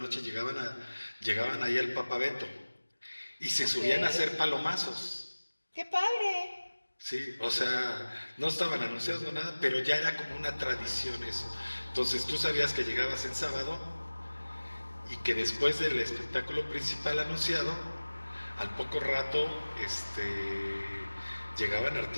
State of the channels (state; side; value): inverted; both; correlation -1.00